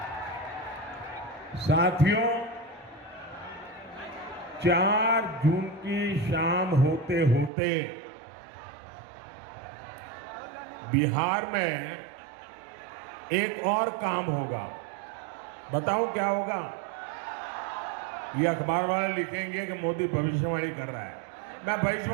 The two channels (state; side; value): drops out; left; at 7.5 s